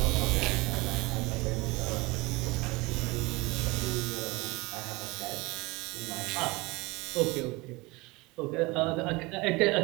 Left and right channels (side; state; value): left; quieter; 23.6 dB